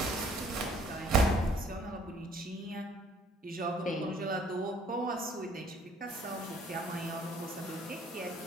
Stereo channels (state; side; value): normal; both; correlation 0.60